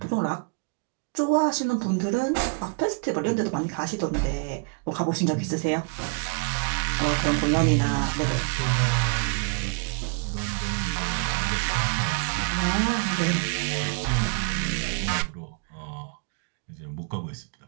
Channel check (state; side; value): quieter; left; 37.0 dB